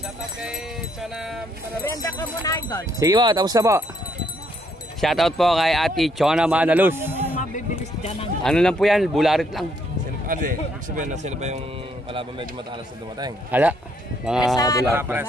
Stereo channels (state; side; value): normal; both; correlation 0.71